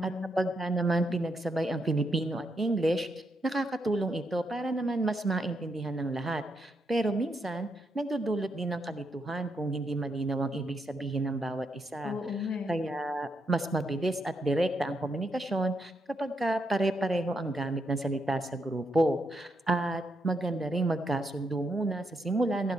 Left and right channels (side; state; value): both; normal; correlation 0.80